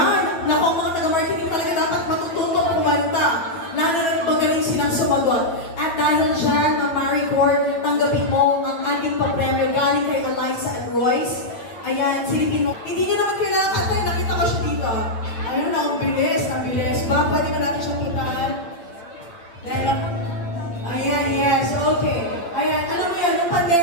Naku, mga taga-marketing talaga dapat matututong kumanta. Lalo na magaling silang sumagot. At dahil dyan, Maricore, tanggapin mo ang ating papremyo galing kay Eliza and Royce. Ayan, silipin mo. Hindi niyo naman kailangan kantay, nakita ko siya dito. Ayun na, ang bilis. Ba, pwede ba natin siyang puntahan? Dahil ako. Ayan, yes, okay. Ayan, alam mo yan, yung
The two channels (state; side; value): late; right; 8.9 ms